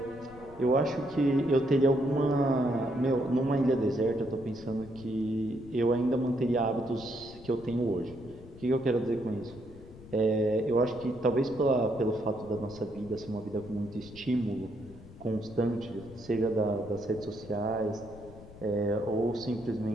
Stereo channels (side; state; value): left; noise; rumble, 18 dB below the sound